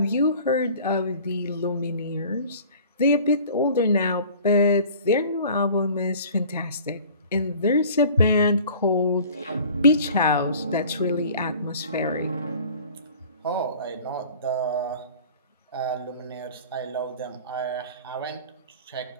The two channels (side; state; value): both; inverted; correlation -0.46